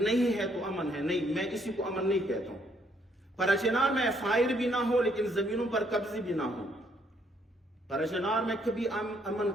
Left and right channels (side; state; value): both; normal; correlation 0.69